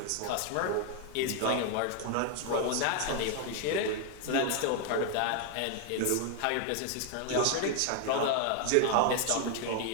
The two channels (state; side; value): different; both; correlation 0.00